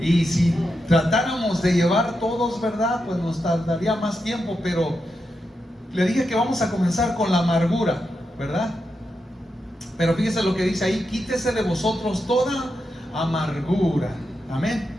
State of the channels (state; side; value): normal; both; correlation 0.86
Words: si tratáramos de llevar todos, ¿verdad? Pues nos tardaría más tiempo, pero le dije que vamos a comenzar con la amargura, ¿verdad? Pero fíjese lo que dice ahí: quítese de vosotros toda amargura. Amén.